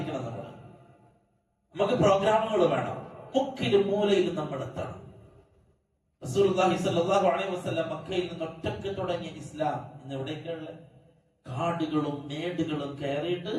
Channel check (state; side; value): identical; both; correlation 1.00